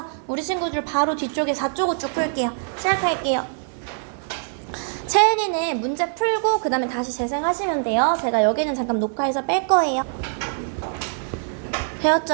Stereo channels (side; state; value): left; silent; 63 dB below the other